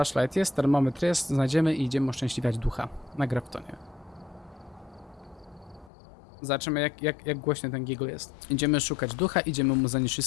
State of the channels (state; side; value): drops out; right; at 5.9 s